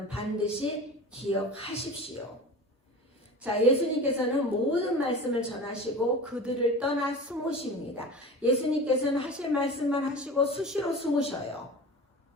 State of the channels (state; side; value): normal; both; correlation 0.34